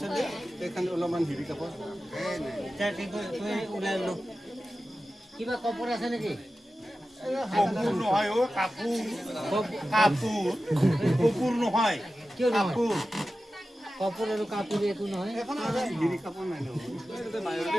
এখন অলপমান হিৰি কাপড় ওলাই লো কিবা কপৰ আছে নেকি কাপোৰ নহয় অ কাপোৰ কাপোৰ কাপোৰ নহয় কিয় কাপোৰ কপৰ আৰু কাপোৰ একো নহয় এখন হিৰি কাপড় নাই ন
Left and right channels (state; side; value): normal; both; correlation 0.94